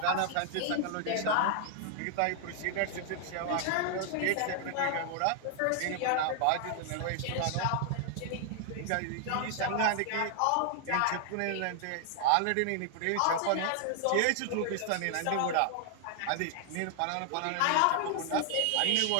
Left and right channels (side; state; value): both; different; correlation 0.00